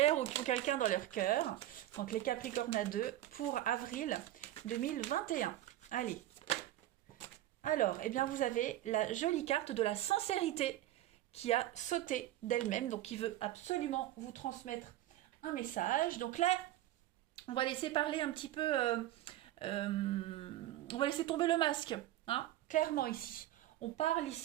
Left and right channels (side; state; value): left; quieter; 14.1 dB